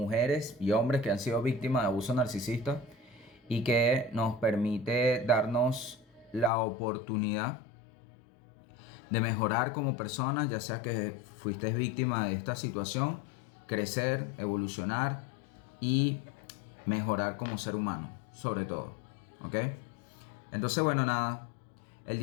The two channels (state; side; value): drops out; right; at 6.5 s